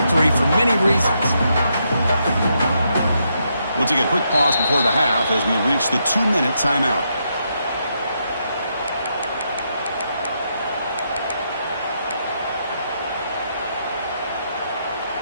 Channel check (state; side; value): inverted; both; correlation -0.79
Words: for many reasons. We'll take a quick pause before the half as we reach the 2-minute timeout.